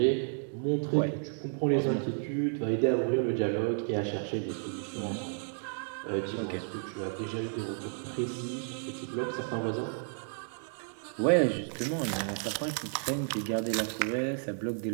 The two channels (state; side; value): silent; left; digital silence